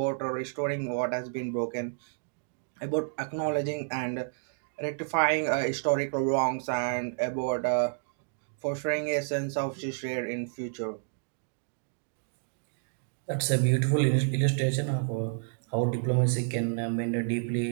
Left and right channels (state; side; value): silent; left; digital silence